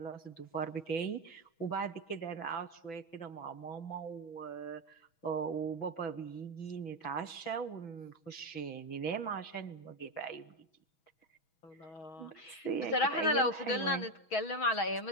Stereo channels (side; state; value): right; late; 6.0 ms